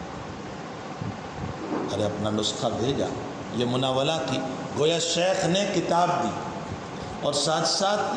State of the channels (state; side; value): identical; both; correlation 1.00